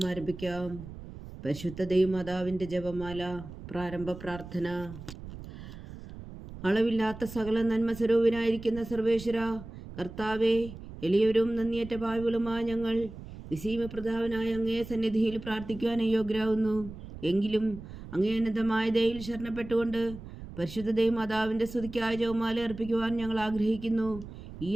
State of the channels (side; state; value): right; noise; rumble, 13 dB below the sound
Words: ആരംഭിക്കാം. പരിശുദ്ധ ദൈവമാതാവിൻ്റെ ജപമാല. പ്രാരംഭ പ്രാർത്ഥന. അളവില്ലാത്ത സകല നന്മ സ്വരൂപനായിരിക്കുന്ന സർവേശ്വര കർത്താവേ, എളിയവരും നന്ദിയേറ്റ പാവികളുമായ ഞങ്ങൾ നിസീമപ്രതാപനായ അങ്ങേ സന്നിധിയിൽ പ്രാർത്ഥിക്കുവാൻ അയോഗ്യരാകുന്നു. എങ്കിലും അങ്ങേ അനന്തമായ ദയയിൽ ശരണപ്പെട്ടുകൊണ്ട് പരിശുദ്ധ ദൈവമാതാവിൻ്റെ സ്തുതിക്കായ ജപമാല അർപ്പിക്കുവാൻ ഞങ്ങൾ ആഗ്രഹിക്കുന്നു. ഈ